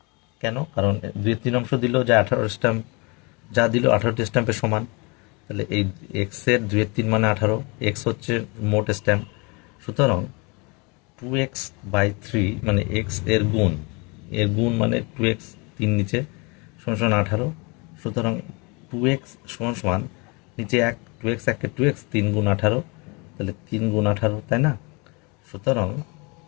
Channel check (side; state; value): right; quieter; 29.3 dB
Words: কেন? কারণ 2/3 দিল, যা 18 স্ট্যাম্প, যা দিল 18টি স্ট্যাম্পের সমান। তাহলে এই এক্স এর 2/3 মানে 18, এক্স হচ্ছে মোট স্ট্যাম্প। সুতরাং 2x/3 মানে এক্স এর গুণ, এর গুণ মানে 2x, 3 নিচে সমান 18। সুতরাং 2x সমান সমান নিচে 1, 2x 1 2x, 3 গুণ 18, তাহলে 3 গুণ 18, তাই না? সুতরাং